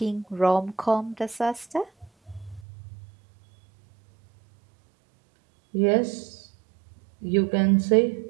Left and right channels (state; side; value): drops out; left; at 2.7 s